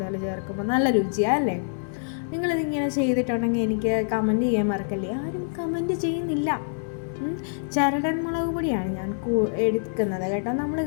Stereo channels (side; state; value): right; silent; 61 dB below the other